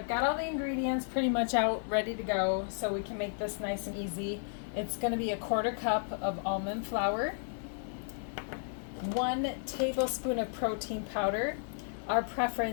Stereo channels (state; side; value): silent; right; digital silence